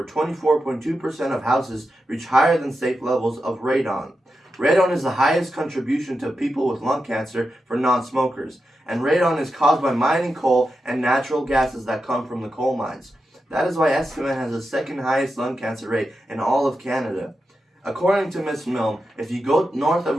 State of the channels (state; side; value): normal; both; correlation 0.89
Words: 24.2% of houses reach higher than safe levels of radon. Radon is the highest contribution to people with lung cancer for non-smokers. And radon is caused by mining coal and natural gases that come from the coal mines. That is why Estevan has the second highest lung cancer rate in all of Canada. According to Ms. Milne, if you go north of